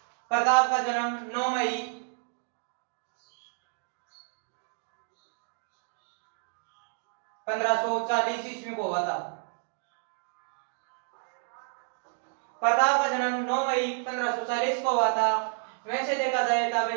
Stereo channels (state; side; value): silent; left; 58 dB below the other